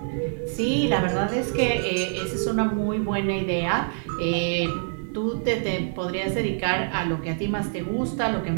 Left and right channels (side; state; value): left; silent; 56 dB below the other